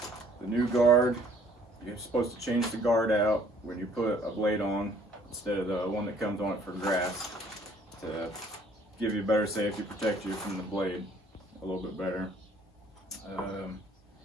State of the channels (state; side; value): normal; both; correlation 0.59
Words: the new guard. You're supposed to change the guard out when you put a blade on instead of the one that comes on it for grass, to give you better safety, protect you from the blade a little bit better.